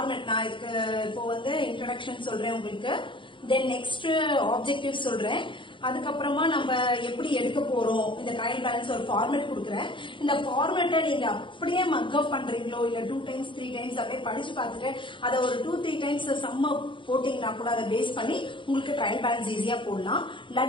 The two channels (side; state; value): right; late; 0.24 ms